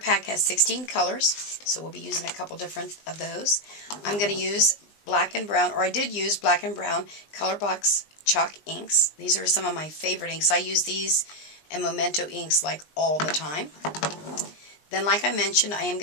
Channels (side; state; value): right; late; 20 ms